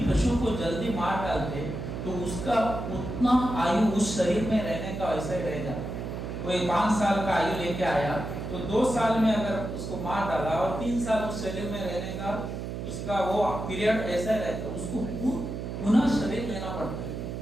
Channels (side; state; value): right; noise; hum, 6 dB below the sound